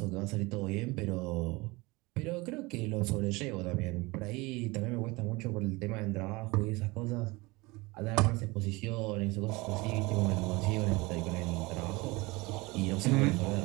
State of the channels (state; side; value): quieter; left; 23.5 dB